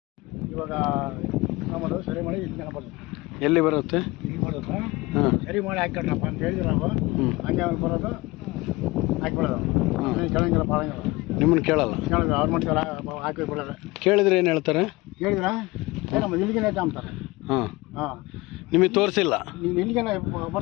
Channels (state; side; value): quieter; right; 21.7 dB